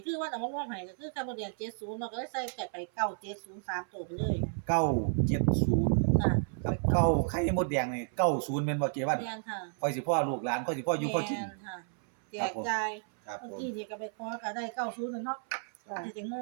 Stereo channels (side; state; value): left; silent; 56 dB below the other